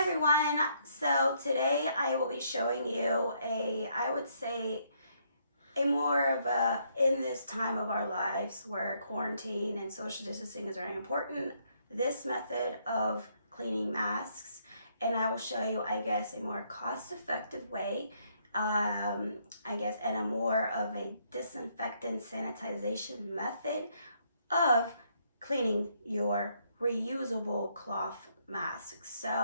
So today I will be showing you I would say, a more of a, in this time of our lives where quarantine and social distancing is very important, this method of cleaning masks. And I will show you, I guess, a more cost-effective way, I guess, and a more of a disinfectant sanitization method of cleaning your reusable cloth masks.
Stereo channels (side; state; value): both; inverted; correlation -0.71